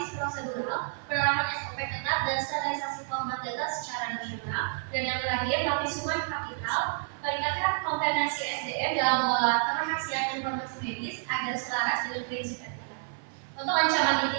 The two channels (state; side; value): silent; left; 58 dB below the other